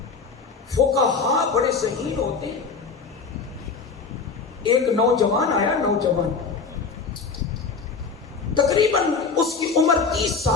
فقہاء بڑے ذہین ہوتے ہیں۔ ایک نوجوان آیا، نوجوان تقریباً اس کی عمر 30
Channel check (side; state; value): right; quieter; 5.0 dB